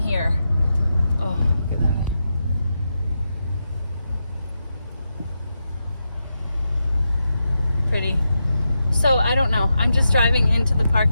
Oh, look at that. Pretty. So I don't know, I'm just driving into the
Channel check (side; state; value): both; inverted; correlation -0.87